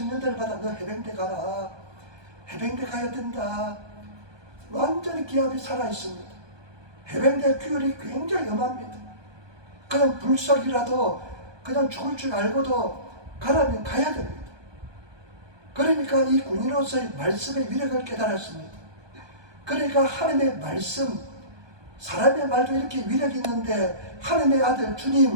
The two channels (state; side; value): late; left; 1.2 ms